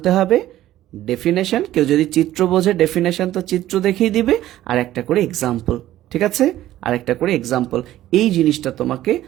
হবে, ডেফিনেশন। কেউ যদি চিত্র বোঝে, ডেফিনেশন তো চিত্র দেখিয়ে দিবে, আর একটা করে এক্সাম্পল। ঠিক আছে? আর একটা করে এক্সাম্পল। এই জিনিসটা তোমাকে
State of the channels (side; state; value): left; quieter; 13.9 dB